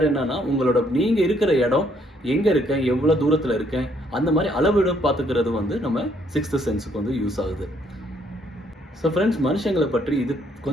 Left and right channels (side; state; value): both; normal; correlation 0.68